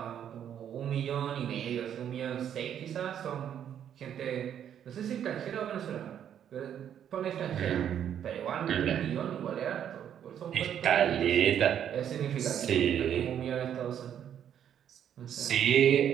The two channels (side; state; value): left; quieter; 9.5 dB